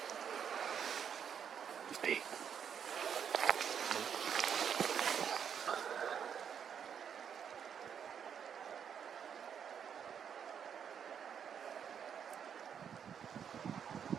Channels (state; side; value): quieter; left; 7.9 dB